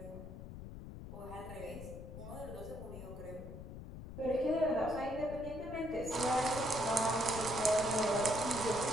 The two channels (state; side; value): noise; left; rumble, 11 dB below the sound